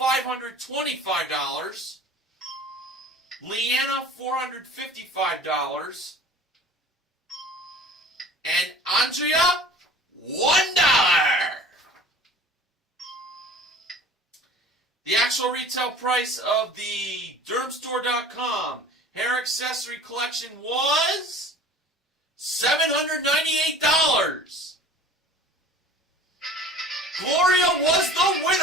Leanna, $455. And Andrea, $1. The actual retail price of the Dermstore.com hair accessory collection was $798. Gloria was the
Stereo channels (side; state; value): both; normal; correlation 0.44